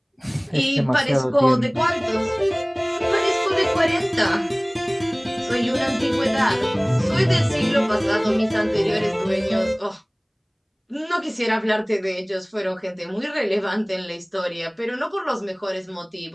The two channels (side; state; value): both; identical; correlation 1.00